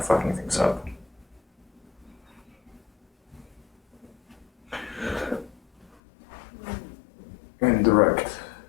fucking things up. Indirect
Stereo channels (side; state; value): right; drops out; at 5.9 s